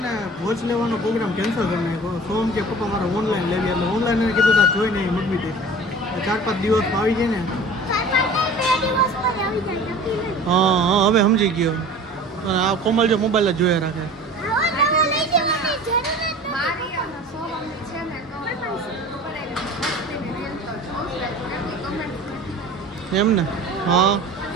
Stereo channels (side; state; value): both; normal; correlation 0.41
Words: વોચ લેવાનો પ્રોગ્રામ કેન્સલ કરી નાખ્યો. સોમ કે પપ્પા મારે ઓનલાઈન લેવી એટલે ઓનલાઈન એને કીધું તા જોઈ નહીં મગવી દે 4-5 દિવસમાં આવી જાય ને. હા હવે સમજી ગયો. આ કોમલ જો મોબાઈલ જ જોયા રાખે એમ ને. હા